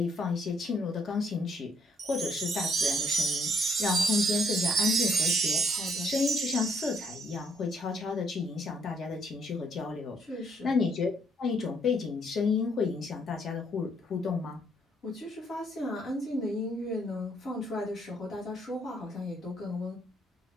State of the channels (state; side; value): normal; both; correlation 0.68